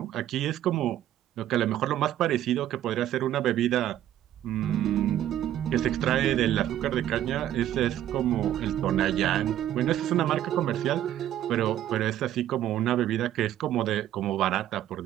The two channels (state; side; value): quieter; left; 12.1 dB